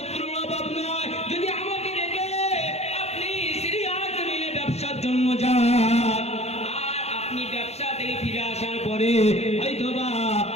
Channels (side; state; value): right; late; 0.31 ms